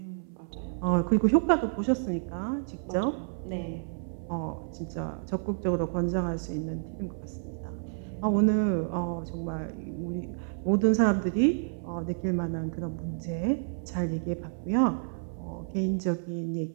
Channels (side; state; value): left; silent; 58 dB below the other